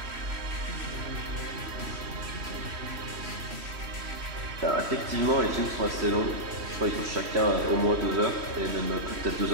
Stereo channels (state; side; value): late; left; 3.1 ms